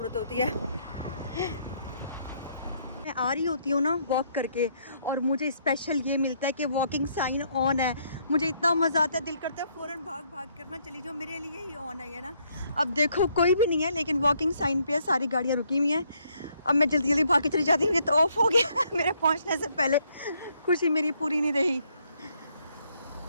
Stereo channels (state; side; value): inverted; both; correlation -0.70